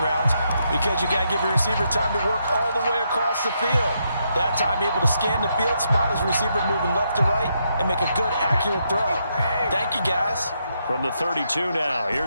routes, because you got to give your receiver time to work all the way across the field. That time able to scan the field, spot his receiver moving left to right, and make a good, accurate throw. Thank you, guys. From the 32 now,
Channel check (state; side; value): inverted; both; correlation -0.79